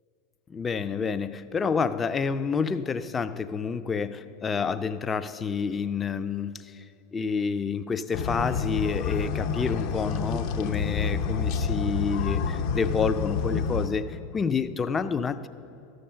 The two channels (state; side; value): quieter; right; 5.3 dB